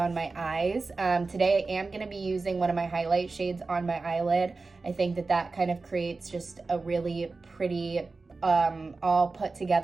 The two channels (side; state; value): left; quieter; 3.9 dB